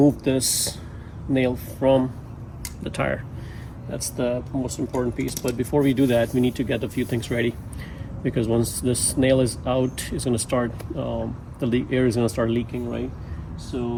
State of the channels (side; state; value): both; identical; correlation 1.00